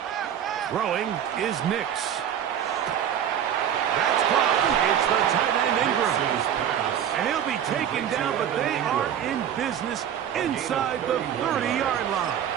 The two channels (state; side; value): quieter; left; 9.5 dB